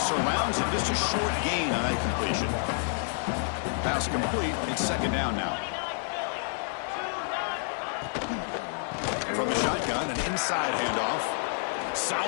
surrounds him, just a short gain on that completion. Pass complete, it's 2nd down now. From the shotgun, an inside handoff.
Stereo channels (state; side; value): silent; right; 59 dB below the other